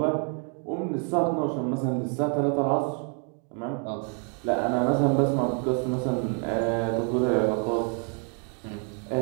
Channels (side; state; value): left; quieter; 39.6 dB